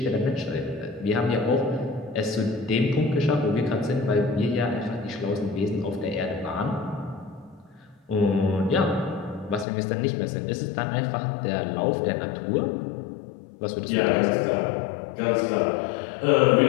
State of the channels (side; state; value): right; drops out; at 9.7 s